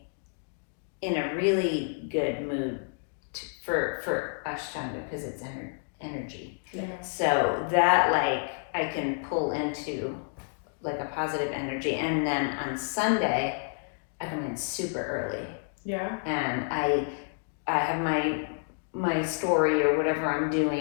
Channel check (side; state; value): right; silent; digital silence